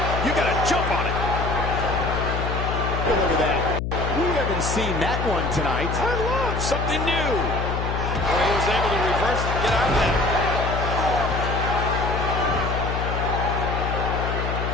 you got to jump on it. Well, look at that. We haven't seen that one tonight. I love something new. Well, he was able to reverse it and get out of that.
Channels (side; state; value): left; noise; hum, 2 dB below the sound